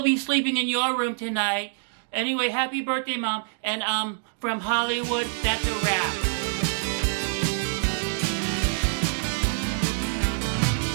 be sleeping in your room tonight. Anyway, happy birthday, Mom. And from Hollywood, that's a wrap.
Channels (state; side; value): silent; left; digital silence